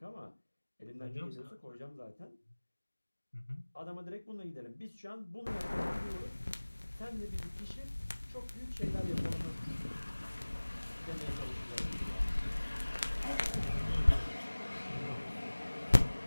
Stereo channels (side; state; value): both; inverted; correlation -1.00